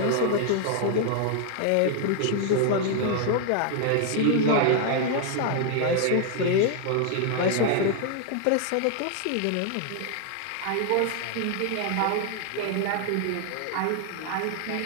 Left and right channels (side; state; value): both; different; correlation 0.00